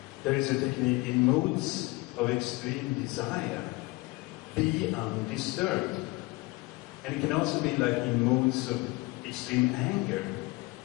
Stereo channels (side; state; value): right; quieter; 23.4 dB